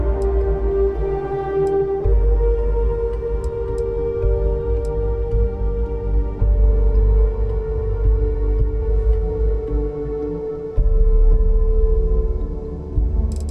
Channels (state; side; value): identical; both; correlation 1.00